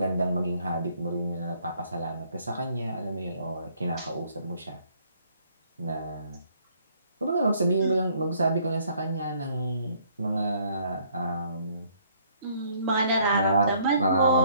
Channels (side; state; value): both; inverted; correlation -0.64